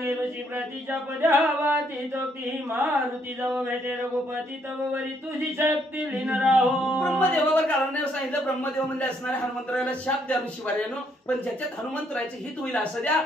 ऋषी प्रतीच्या पद्यावाती तोक्ती मारुती जव भेटे रघुपती तव वरी तुझी शक्ती लीन राहो. ब्रह्मदेवावर कारण सांगितलं. ब्रह्मदेव म्हणजे असणारे हनुमंतराला शाप द्या ऋषीवार्यानो, पण ज्याच्यात हनुमंतरायचे हित होईल असं द्या.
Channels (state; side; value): normal; both; correlation 0.71